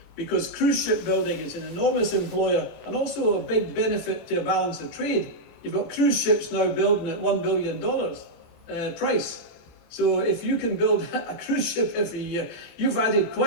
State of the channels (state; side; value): late; right; 21 ms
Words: because cruise ship building is an enormous employer and also a big benefit to a balance of trade. You've got cruise ships now building at $1 billion price. So if you can build a cruise ship every year, you've added